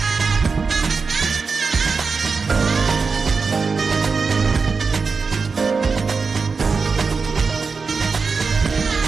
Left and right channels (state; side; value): quieter; left; 4.8 dB